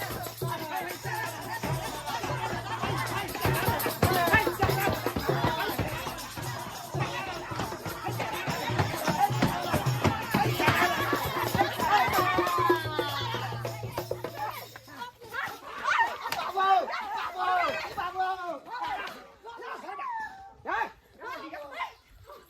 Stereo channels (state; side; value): identical; both; correlation 1.00